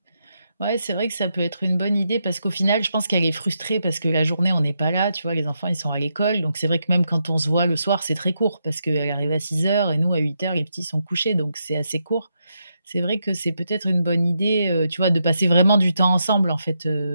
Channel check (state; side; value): inverted; both; correlation -0.82